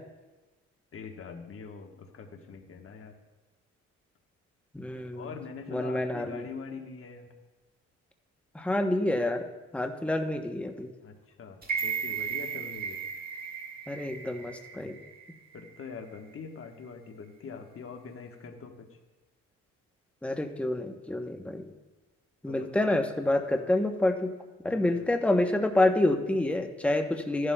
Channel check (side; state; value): both; normal; correlation 0.82